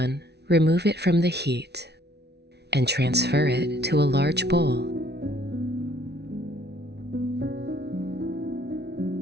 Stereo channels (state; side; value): late; left; 0.49 ms